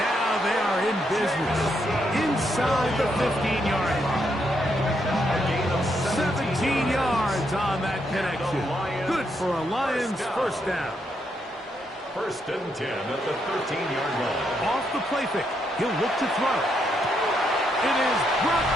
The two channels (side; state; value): both; normal; correlation 0.78